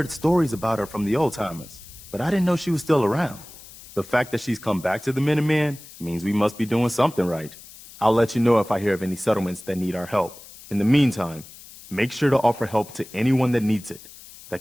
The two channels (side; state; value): left; noise; hiss, 19 dB below the sound